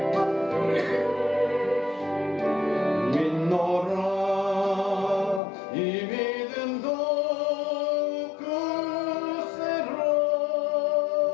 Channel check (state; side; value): drops out; right; at 5.4 s